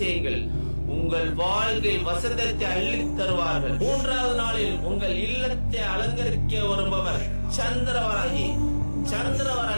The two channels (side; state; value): both; inverted; correlation -1.00